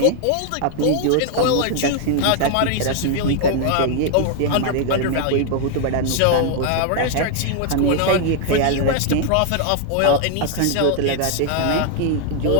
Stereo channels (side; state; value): both; different; correlation 0.00